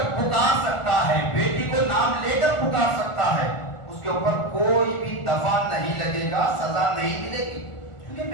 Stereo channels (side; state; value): right; late; 1.4 ms